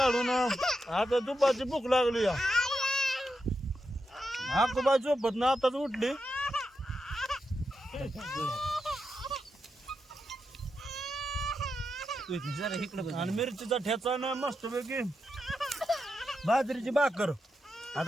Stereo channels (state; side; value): normal; both; correlation 0.86